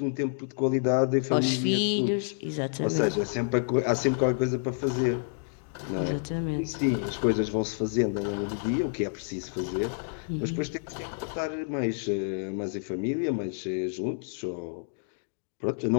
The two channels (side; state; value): right; silent; digital silence